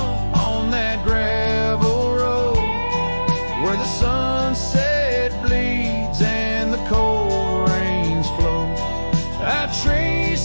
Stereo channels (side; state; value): both; inverted; correlation -1.00